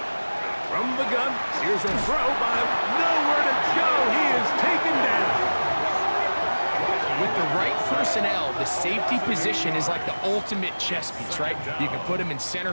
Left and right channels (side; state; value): both; inverted; correlation -1.00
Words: From the gun, here's a throw by nowhere to go. He is taken down. With the right personnel, the safety position is like the ultimate chess piece, right? You can put him in center